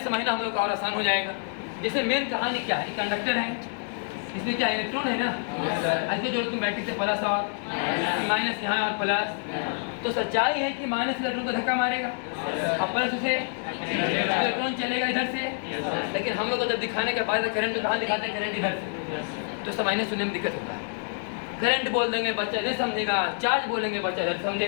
समझना हम लोग का और आसान हो जाएगा। जैसे मेन कहानी क्या है, कंडक्टर है, इसमें क्या इलेक्ट्रॉन है ना, ऐसे जो तुम बैटरी से प्लस और माइनस यहाँ और प्लस, तो सच्चाई है कि माइनस इलेक्ट्रॉन को धक्का मारेगा और प्लस उसे इलेक्ट्रॉन चलेगा इधर से। लेकिन हम लोग को जब दिखाने के बाद करंट तो कहाँ दिखाते हैं, करंट इधर से, तो समझने सुनने में दिक्कत होता है। करंट बोल देंगे बच्चा इधर समझेगा, चार्ज बोलेंगे बच्चा इधर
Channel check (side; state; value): right; silent; 60 dB below the other